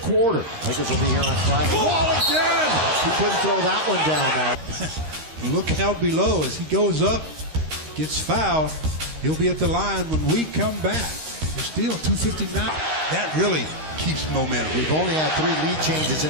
quarter. Lakers will be here on Friday. Wall again! He couldn't throw that one down now. Look how below as he goes up, gets fouled. He'll be at the line when we come back. There's still 2:59. That really keeps momentum. We've only had 3 lead changes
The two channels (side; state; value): left; late; 13 ms